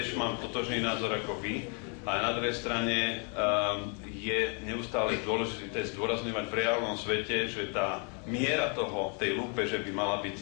mám totožný názor ako vy, ale na druhej strane je neustále dôležité zdôrazňovať v reálnom svete, že tá miera tej lúpeže by mala byť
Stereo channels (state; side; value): quieter; right; 37.7 dB